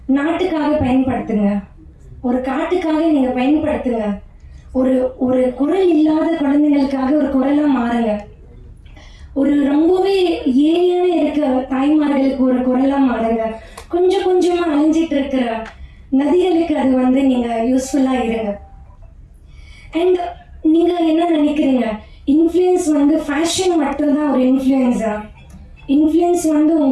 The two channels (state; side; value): identical; both; correlation 1.00